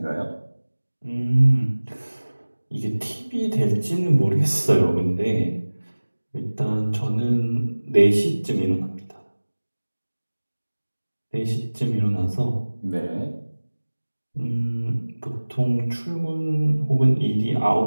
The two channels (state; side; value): inverted; both; correlation -1.00